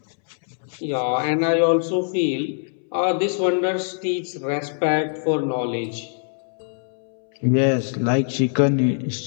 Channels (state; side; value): silent; right; 63 dB below the other